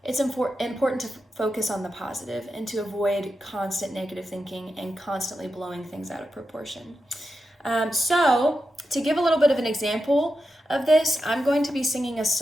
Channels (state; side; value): normal; both; correlation 0.89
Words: It's important to focus on the positive and to avoid constant negative thinking and constantly blowing things out of proportion. So to give a little bit of an example of this, I'm going to be singing a